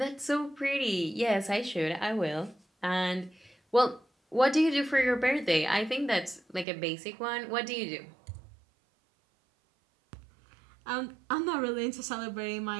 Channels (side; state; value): left; drops out; at 6.7 s